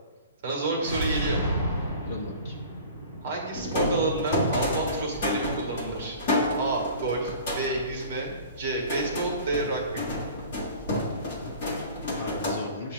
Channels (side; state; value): both; inverted; correlation -0.42